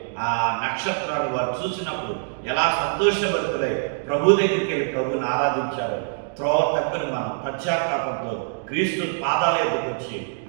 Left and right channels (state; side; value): silent; left; digital silence